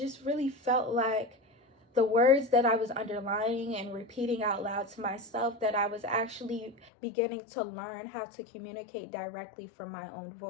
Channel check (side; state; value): right; drops out; at 6.9 s